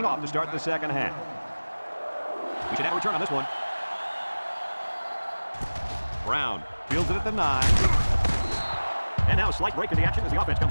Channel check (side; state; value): both; inverted; correlation -1.00